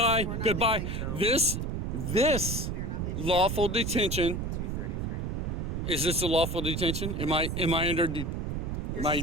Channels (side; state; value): right; noise; rumble, 2 dB below the sound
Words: We're not Goodbye. leaving, so- This We are not leaving. lawful detention. 233. Is this a lawful detention? Am I under Am I